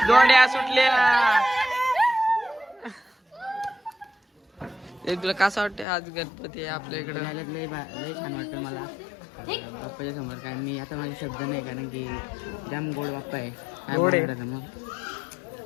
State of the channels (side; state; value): right; drops out; at 5.9 s